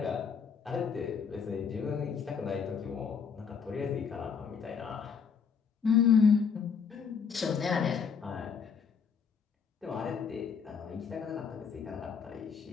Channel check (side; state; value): right; quieter; 6.4 dB